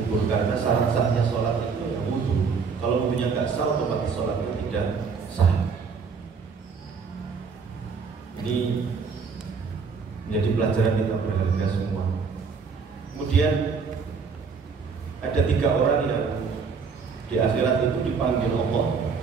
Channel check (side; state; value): left; quieter; 5.4 dB